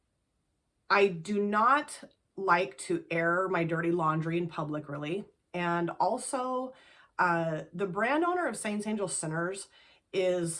I do not like to air my dirty laundry in public, really. And also, the brand owner of Saints Angel Sinners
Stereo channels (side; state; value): both; identical; correlation 1.00